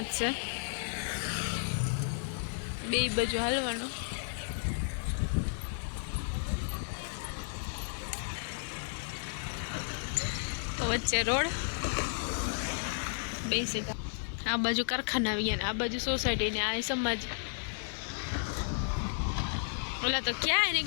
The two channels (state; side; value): silent; right; digital silence